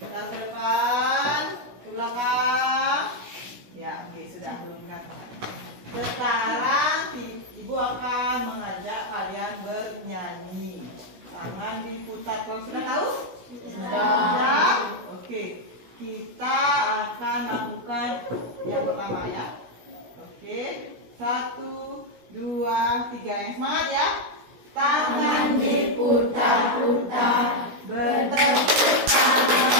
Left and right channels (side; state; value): left; late; 16 ms